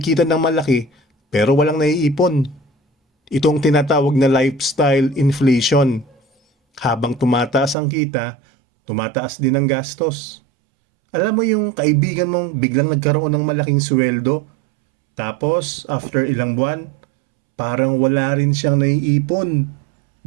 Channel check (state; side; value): drops out; left; at 7.8 s